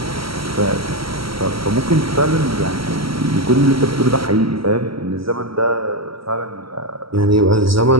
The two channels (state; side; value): late; left; 0.75 ms